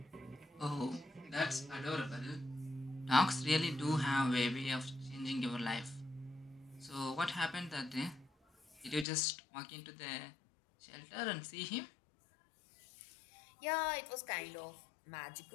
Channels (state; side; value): drops out; right; at 9.1 s